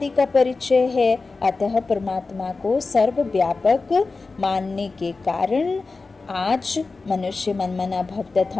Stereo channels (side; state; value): right; quieter; 3.9 dB